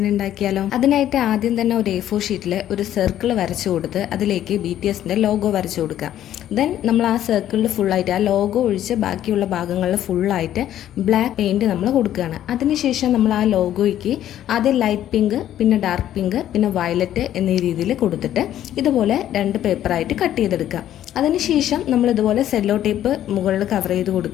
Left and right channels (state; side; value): quieter; right; 11.8 dB